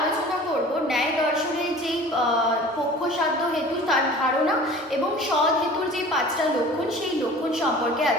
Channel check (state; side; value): normal; both; correlation 0.43